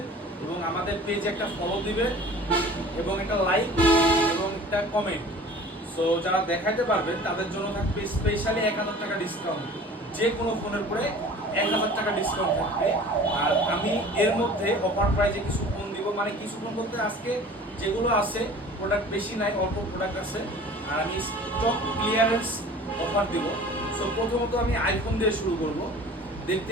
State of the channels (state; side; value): normal; both; correlation 0.44